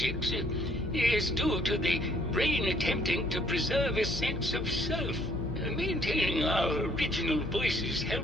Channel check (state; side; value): noise; left; hum, 8 dB below the sound